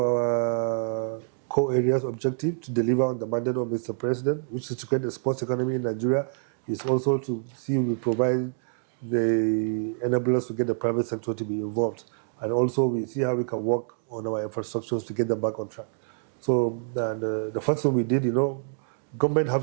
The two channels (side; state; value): left; silent; digital silence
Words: core areas objective to deliver on the mandate of Mr. President, which is to create a sports economy in Nigeria, is also to see we provide the enablers to get the private sector to be involved. And also we see how we can work on our infrastructures to get them back on track. So the first thing we did, government